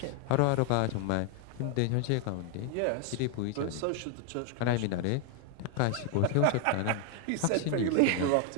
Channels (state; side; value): different; both; correlation 0.00